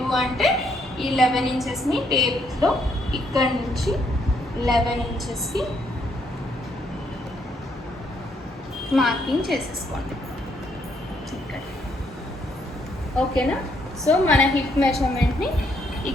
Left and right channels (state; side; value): normal; both; correlation 0.72